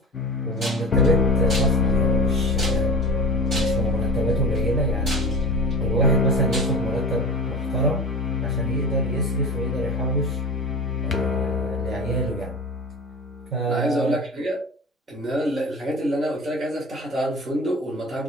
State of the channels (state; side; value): normal; both; correlation 0.32